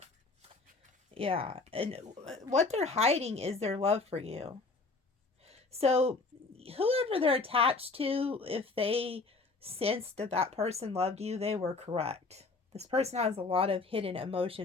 Yeah. And what they're hiding is their love for you. So whoever they're attached to, if they sensed that that person loved you, they were correct. This person has a lot of hidden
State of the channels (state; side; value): quieter; right; 3.8 dB